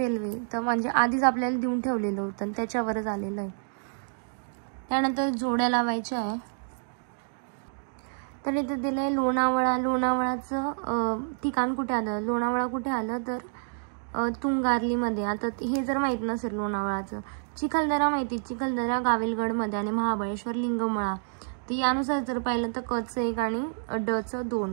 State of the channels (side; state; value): left; silent; digital silence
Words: तर म्हणजे आधीच आपल्याला देऊन ठेवलेलं होतं, त्याच्यावरच आलेलं आहे. त्यानंतर जोड्या लावायच्या आहे. तर इथे दिलं आहे लोणावळाचं ठिकाण कुठे आलं? लोणावळा कुठे आलं? तर तुंगार्लीमध्ये. आता हे जर माहीत नसेल लोणावळाचं. चिखलदरा माहिती, चिखलदरा गाविलगडमध्ये आणि महाबळेश्वर लिंगमळा. तर यानुसार जर पाहिलं तर कचं 1 आणि डचं